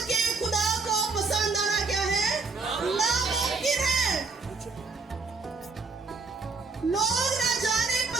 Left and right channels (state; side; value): quieter; left; 4.3 dB